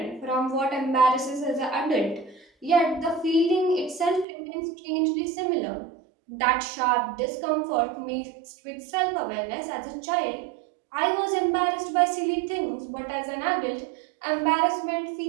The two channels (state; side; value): drops out; left; at 4.2 s